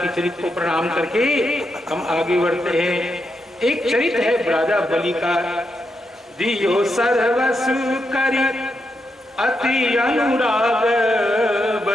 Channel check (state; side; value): normal; both; correlation 0.83